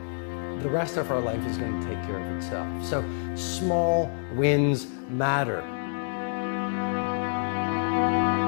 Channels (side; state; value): right; silent; 60 dB below the other